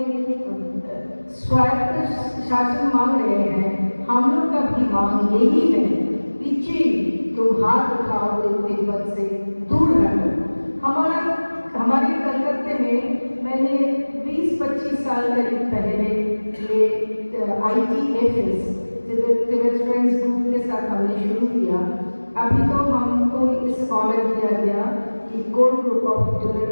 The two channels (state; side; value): inverted; both; correlation -1.00